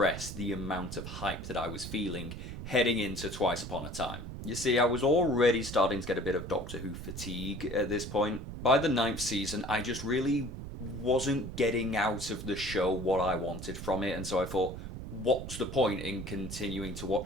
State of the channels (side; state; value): right; noise; rumble, 9 dB below the sound